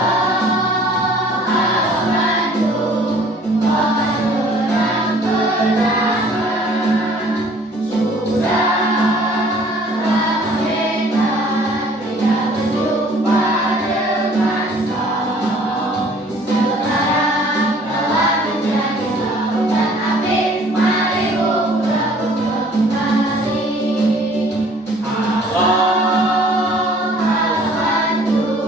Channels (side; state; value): both; normal; correlation 0.54